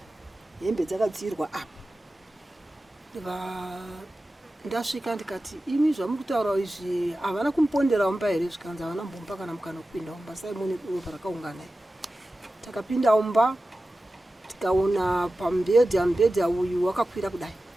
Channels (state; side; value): normal; both; correlation 0.94